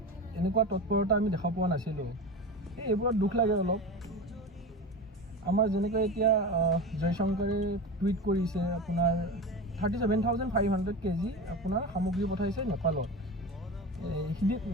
এনেকুৱা তৎপৰতা আমি দেখা পোৱা নাছিলোঁ। এইবোৰত দুখ লাগে অলপ। আমাৰ যেনেকৈ এতিয়া জয়শংকৰে টুইট কৰিছে, আপোনাৰ 37,500 কেজি আপোনাৰ সামগ্ৰী পঠাইছে নেপালত,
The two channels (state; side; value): normal; both; correlation 0.26